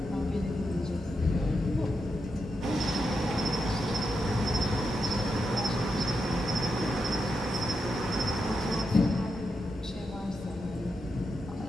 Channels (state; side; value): normal; both; correlation 0.86